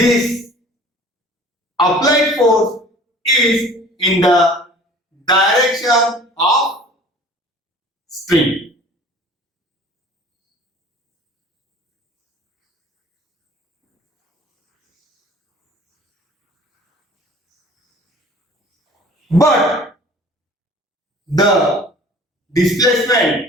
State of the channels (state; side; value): normal; both; correlation 0.47